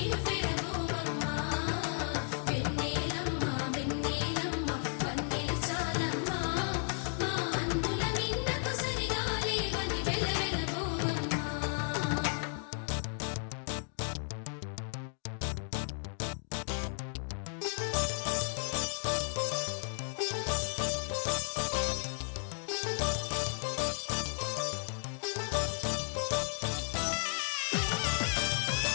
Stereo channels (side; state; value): right; silent; 55 dB below the other